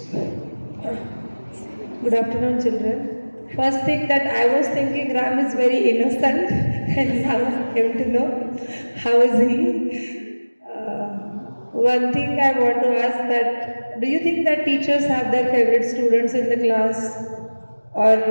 Good afternoon, children. First thing that I was thinking, Ram is very innocent, and now I came to know how is he. One thing I want to ask that, do you think that teachers have their favorite students in the class,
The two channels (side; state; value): both; inverted; correlation -1.00